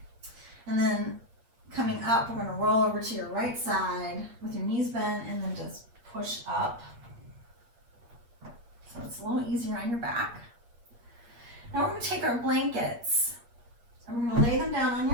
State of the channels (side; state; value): left; late; 8.5 ms